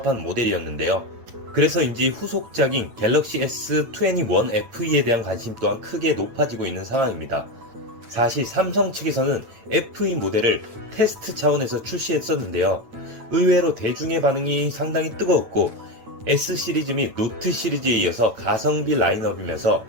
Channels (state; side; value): late; left; 9.0 ms